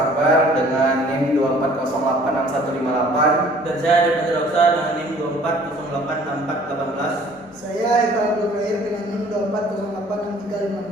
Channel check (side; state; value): both; normal; correlation 0.54